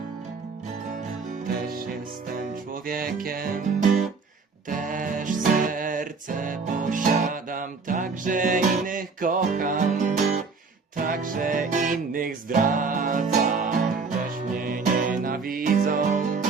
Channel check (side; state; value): left; quieter; 4.7 dB